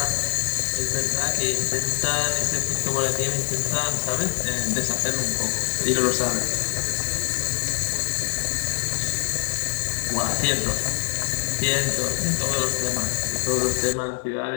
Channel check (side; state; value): right; silent; digital silence